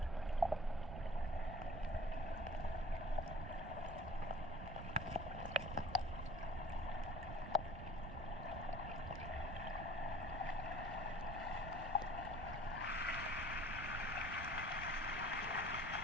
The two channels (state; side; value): noise; right; rumble, 7 dB below the sound